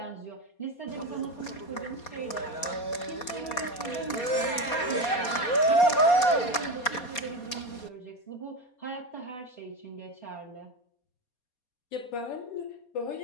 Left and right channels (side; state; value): right; late; 4.2 ms